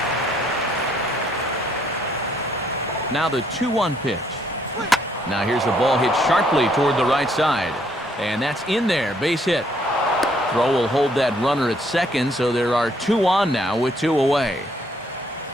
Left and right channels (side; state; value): both; normal; correlation 0.68